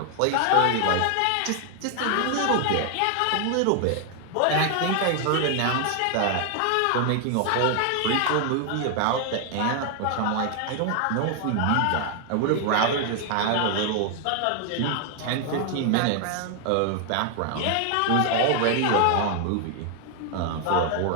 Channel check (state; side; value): different; both; correlation 0.00